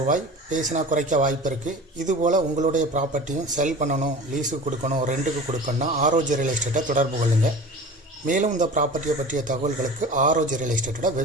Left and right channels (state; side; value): normal; both; correlation 0.37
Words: பேசினா குறைக்க வாய்ப்பு இருக்குது. இதுபோல் உங்களுடைய ப்ராப்பர்ட்டியும் செல் பண்ணணும், லீஸுக்கு கொடுக்கணும், ரெண்டுக்கு கொடுக்கணும்னா ஆர்ஓஜி ரியல் எஸ்டேட்டை தொடர்பு கொள்ளுங்கள். மேலும் இந்த ப்ராப்பர்ட்டியை பற்றிய தகவல்களுக்கு ஆர்ஓஜி ரியல் எஸ்டேட்டோட